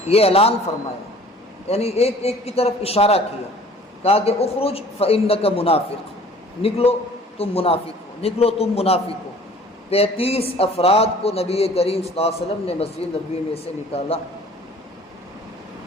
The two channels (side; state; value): both; normal; correlation 0.50